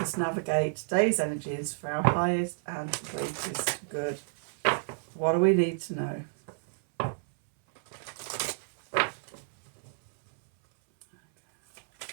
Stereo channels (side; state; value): left; silent; 58 dB below the other